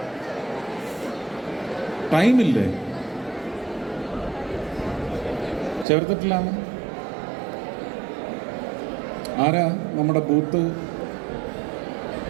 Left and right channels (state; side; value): drops out; left; at 5.9 s